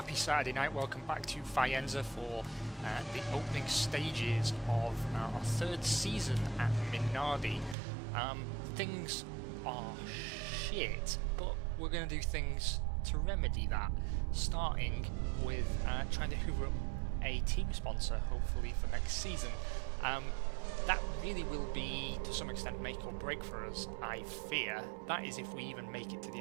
Saturday night, welcome back to Faenza for the opening stages of our third season at Minardi. Things are shit, but we're going to do things to remedy that, starting with trying to hoover up a team sponsor, hopefully for next season. That really will be, to some extent, make or break for us, I fear. That is if we even make it to the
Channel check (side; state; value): left; drops out; at 7.8 s